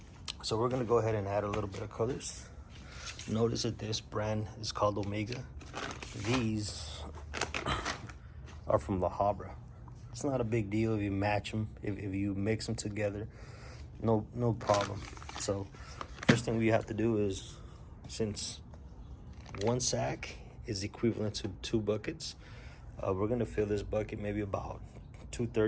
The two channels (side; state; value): both; identical; correlation 1.00